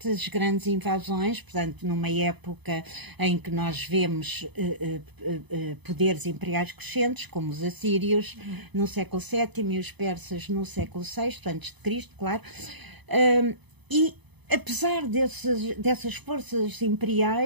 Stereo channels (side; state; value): left; late; 0.99 ms